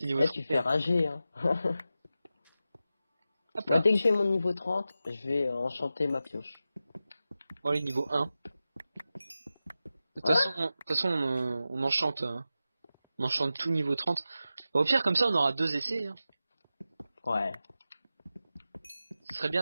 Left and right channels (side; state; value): both; inverted; correlation -0.92